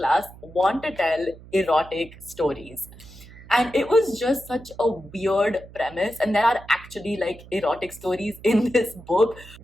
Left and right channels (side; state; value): right; noise; hum, 19 dB below the sound